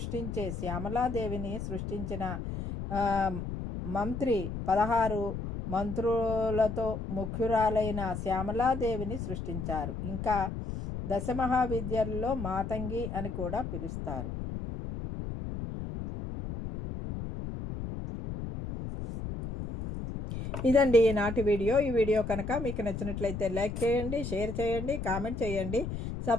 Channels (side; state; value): left; noise; rumble, 6 dB below the sound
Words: శ్యామలాదేవిని సృష్టించిన మంత్రి 16 మంత్రులతో ముఖ్యురాలైన శ్యామలాదేవిని సృష్టించారు. ఇంకా దశమహావిద్యల్లో మాతంగి అని కూడా పిలుస్తారు. ఇదండి ఈనాటి వీడియో. ఈ వీడియో కనుక మీకు నచ్చినట్లయితే లైక్ చేయండి, షేర్ చేయండి, కామెంట్ చేయండి,